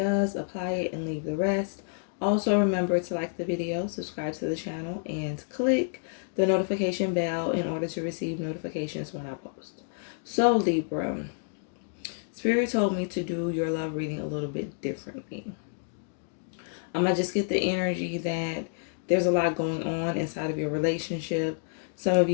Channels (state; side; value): silent; right; digital silence